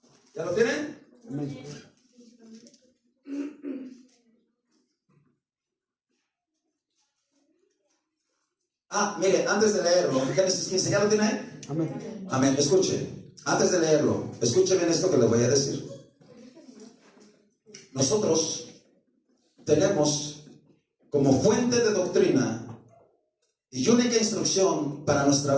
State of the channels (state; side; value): identical; both; correlation 1.00